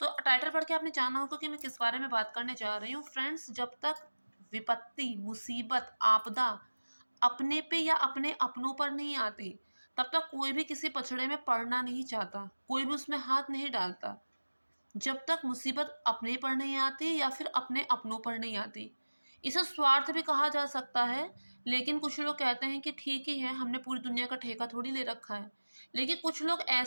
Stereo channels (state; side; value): inverted; both; correlation -1.00